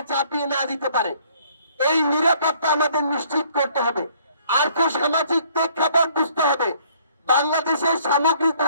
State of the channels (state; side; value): inverted; both; correlation -0.61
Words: চাপিয়ে না দিতে পারে। এই নিরাপত্তা আমাদের নিশ্চিত করতে হবে। আর্থ সামাজিক প্রেক্ষাপট বুঝতে হবে, বাংলাদেশের